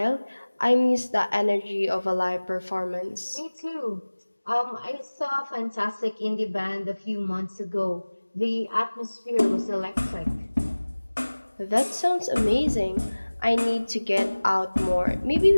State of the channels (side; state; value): both; inverted; correlation -1.00